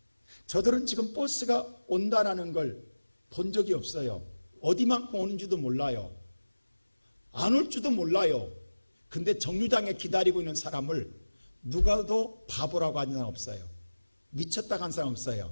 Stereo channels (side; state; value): both; inverted; correlation -1.00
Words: 저들은 지금 버스가 온다라는 걸 본 적이 없어요. 어디만큼 오는지도 몰라요. 안 올 줄도 몰라요. 근데 정류장에 기다리고 있는 사람을 누가도 바보라고 하는 사람 없어요. 미쳤다 한 사람